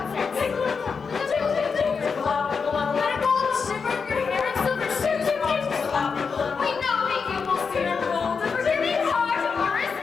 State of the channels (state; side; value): quieter; right; 5.5 dB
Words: chip, chip, chip, pickle out, pickle out. Let it go, shiver your hair in silver shoes, chip, chip, pickle out, pickle out. We know that you will steer gold, the Virginia heart of your is